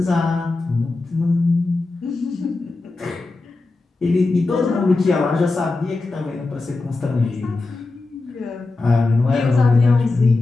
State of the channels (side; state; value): right; quieter; 3.4 dB